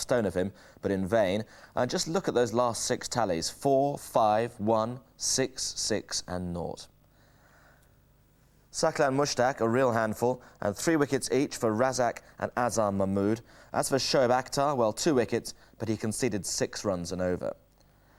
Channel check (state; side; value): identical; both; correlation 1.00